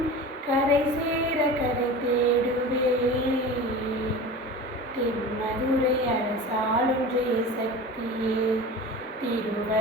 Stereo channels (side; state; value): both; normal; correlation 0.34